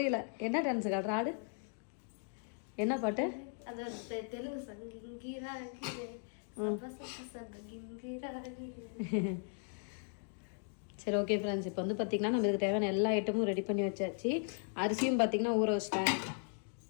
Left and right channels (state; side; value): silent; right; 53 dB below the other